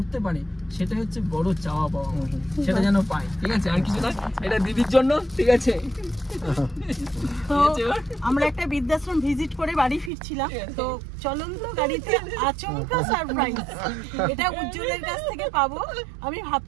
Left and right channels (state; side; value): drops out; left; at 10.1 s